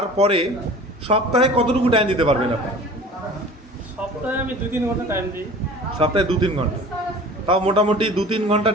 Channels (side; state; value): both; normal; correlation 0.42